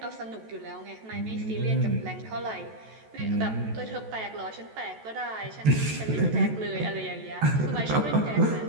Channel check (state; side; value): late; left; 14 ms